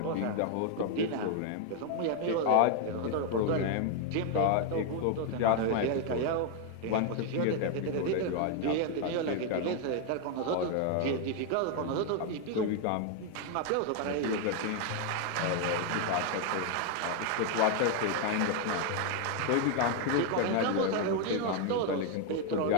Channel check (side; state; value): both; different; correlation 0.01